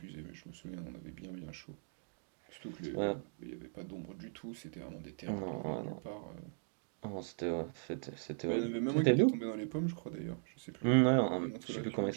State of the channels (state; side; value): silent; left; digital silence